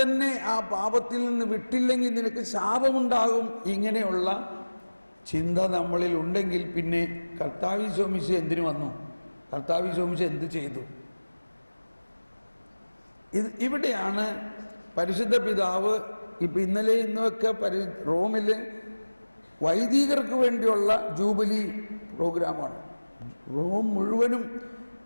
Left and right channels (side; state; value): both; inverted; correlation -1.00